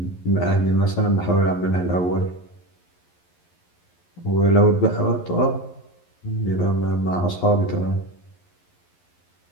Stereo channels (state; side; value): late; right; 11 ms